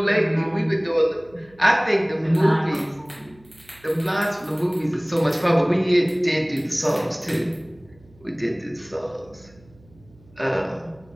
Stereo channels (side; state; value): right; noise; hum, 27 dB below the sound